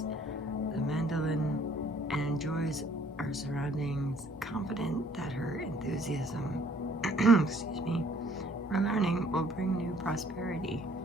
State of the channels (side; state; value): both; normal; correlation 0.60